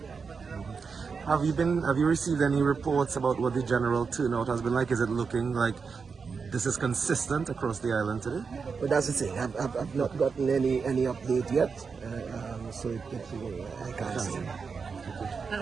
Have you received any reports about what the general turnout has been like? Is it looking like this is consistent across the island today? But that's the thing. I've not gotten any update yet, so I can't say. And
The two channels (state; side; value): quieter; left; 5.4 dB